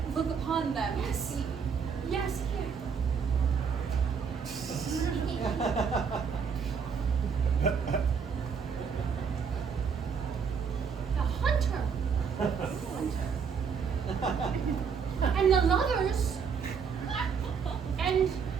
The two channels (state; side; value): quieter; left; 6.2 dB